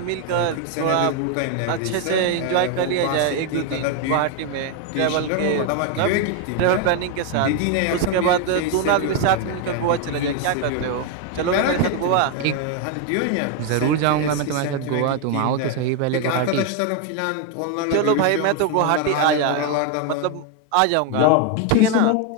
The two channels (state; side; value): different; both; correlation 0.01